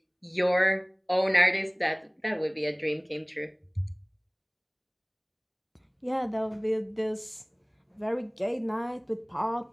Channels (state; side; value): identical; both; correlation 1.00